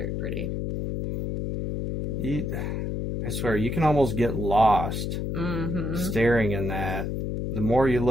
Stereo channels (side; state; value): left; noise; hum, 2 dB below the sound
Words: pretty. I swear, you can almost get lost staring in that. The more you